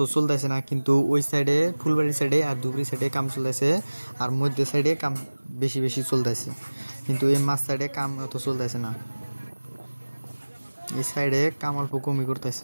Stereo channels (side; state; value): both; inverted; correlation -1.00